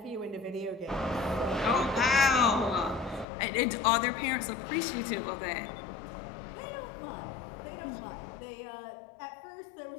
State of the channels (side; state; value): right; drops out; at 3.2 s